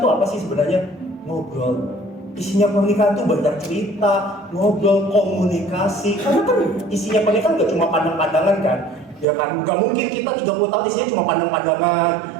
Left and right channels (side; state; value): left; drops out; at 9.2 s